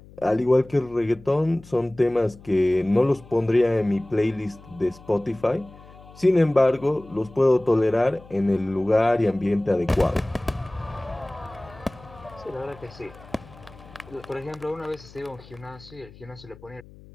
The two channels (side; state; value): left; noise; hum, 21 dB below the sound